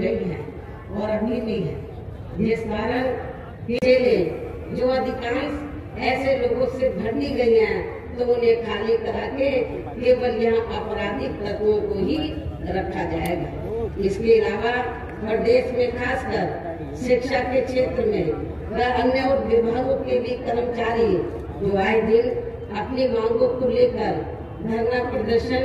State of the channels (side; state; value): both; identical; correlation 1.00